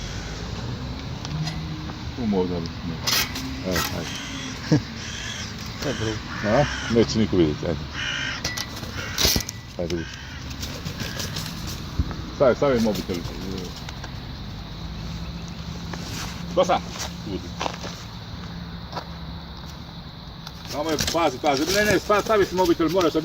Tu možda bi se. Evo, ajde. To je drugo. A? Neće niko vidjeti, ajde. Ajde, vidi. Stavi mobitel. Dosta! Budi. Samo je, pazi. Ne, stavi si mobitel, moraš sa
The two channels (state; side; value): identical; both; correlation 1.00